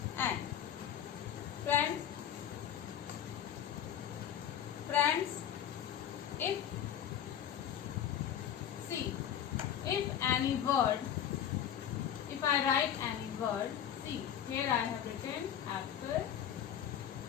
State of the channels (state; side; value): quieter; right; 9.7 dB